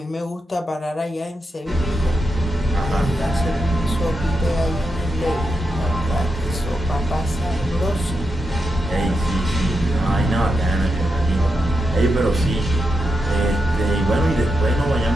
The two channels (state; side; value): normal; both; correlation 0.86